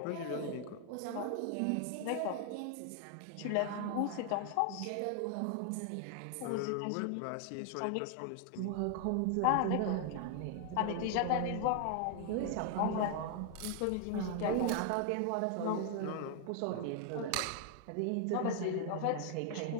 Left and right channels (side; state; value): both; different; correlation 0.00